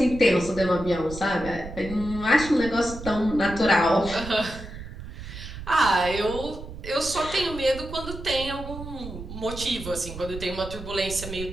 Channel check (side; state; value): right; noise; rumble, 11 dB below the sound